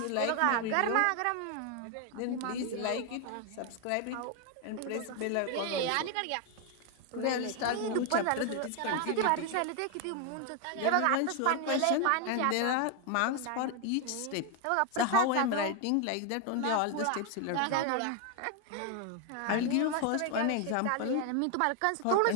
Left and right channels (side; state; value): both; different; correlation 0.01